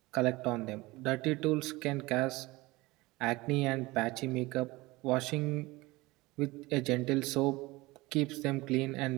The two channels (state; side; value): quieter; left; 21.3 dB